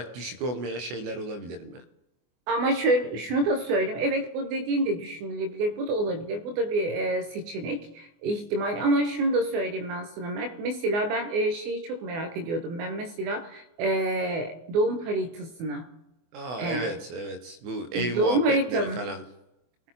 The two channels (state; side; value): late; left; 24 ms